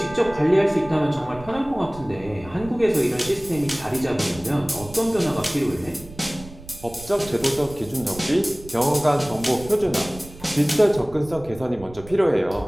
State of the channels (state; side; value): noise; right; rumble, 18 dB below the sound